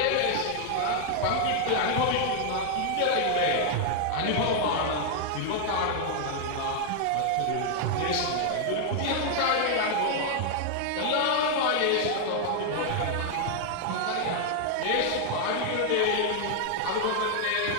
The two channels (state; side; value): different; both; correlation 0.00